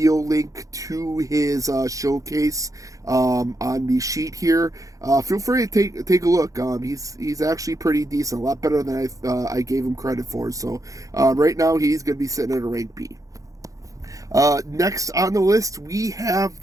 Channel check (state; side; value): late; left; 0.16 ms